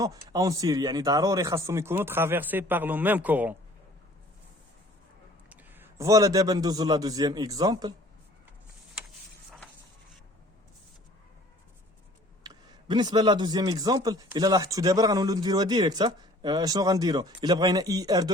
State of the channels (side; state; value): both; normal; correlation 0.52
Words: اون سيري، يعني ضروري خاصهم يكونوا ترافيرسي باغ لو ميم كورون. فوالا. دابا ندوزو لا دوزيام اكزامبل. بالنسبه لا دوزيام اكزامبل الا لاحظتوا دابا غنولوا نديروها ديريكت. شنو غنديروا؟ الا بغينا اي ار